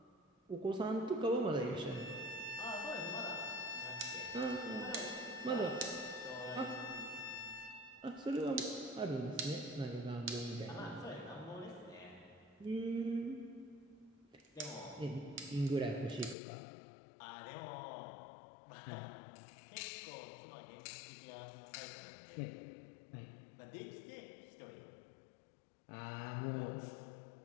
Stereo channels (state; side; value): drops out; right; at 16.4 s